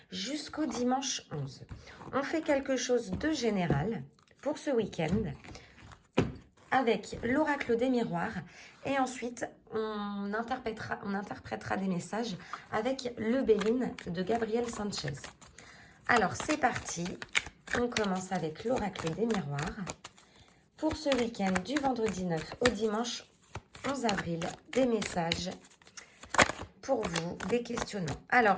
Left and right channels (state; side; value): identical; both; correlation 1.00